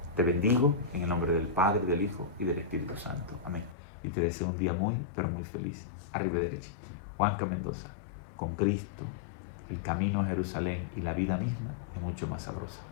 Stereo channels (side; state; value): right; drops out; at 3.8 s